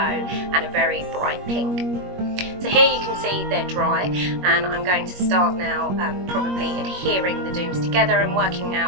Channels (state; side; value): late; left; 21 ms